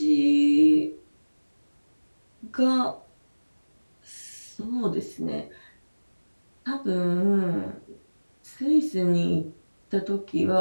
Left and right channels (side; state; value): both; inverted; correlation -1.00